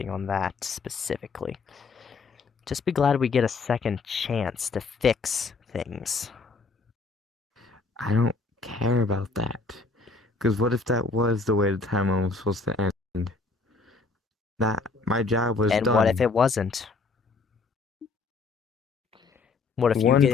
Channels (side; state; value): right; quieter; 4.1 dB